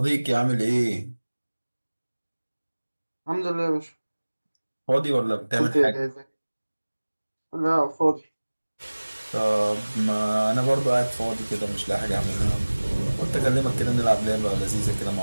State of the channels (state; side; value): inverted; both; correlation -1.00